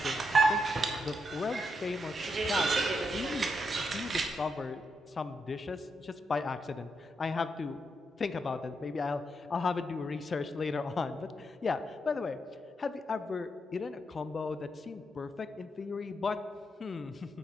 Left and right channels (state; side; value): normal; both; correlation 0.82